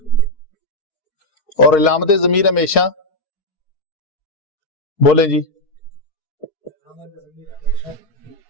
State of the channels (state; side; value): late; right; 4.6 ms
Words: اور علامت ضمیر ہمیشہ بولیں جی